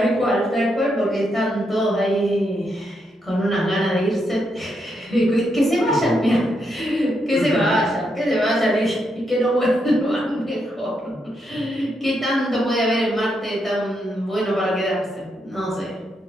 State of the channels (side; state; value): both; normal; correlation 0.80